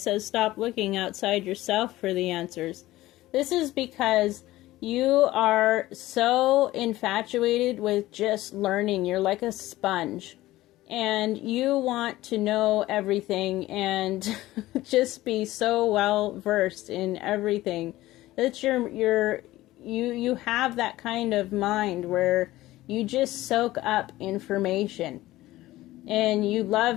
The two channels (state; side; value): quieter; right; 16.8 dB